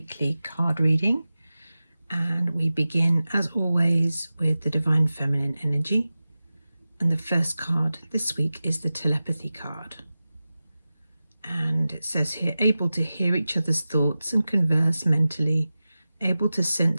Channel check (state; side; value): inverted; both; correlation -0.96